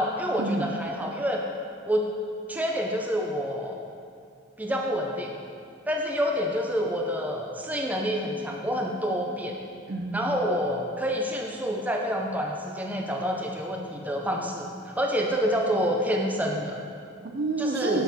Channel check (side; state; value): both; normal; correlation 0.50